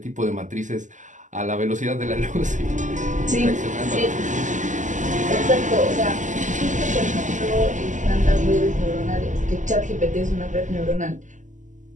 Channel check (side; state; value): left; late; 0.36 ms